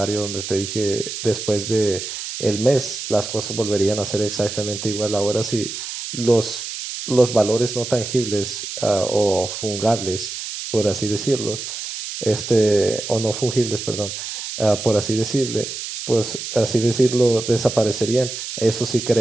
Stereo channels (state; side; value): noise; right; hiss, 7 dB below the sound